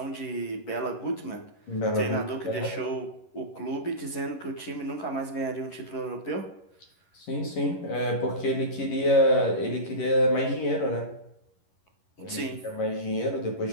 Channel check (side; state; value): right; late; 11 ms